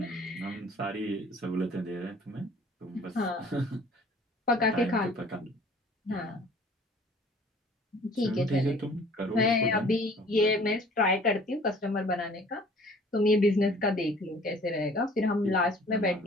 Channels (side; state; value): both; normal; correlation 0.52